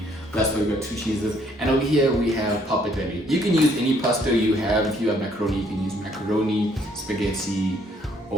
That's why we got 2 cheeses. And over here we have pappardelle. You can use any pasta you have. If you have macaroni, you can use macaroni, spaghetti,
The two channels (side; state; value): both; normal; correlation 0.66